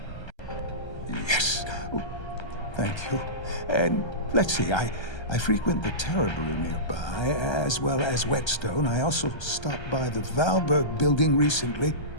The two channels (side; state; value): right; late; 1.3 ms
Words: Yes. Oh, thank you. And let's see, I frequent the Terrabrew nearby, as well as Whetstone. I also stopped by the Valberg building recently.